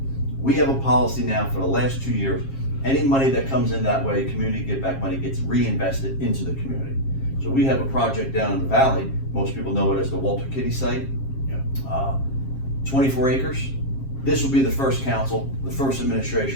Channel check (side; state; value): right; late; 7.4 ms